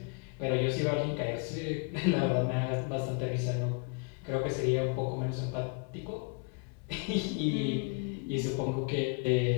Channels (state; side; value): quieter; right; 35.8 dB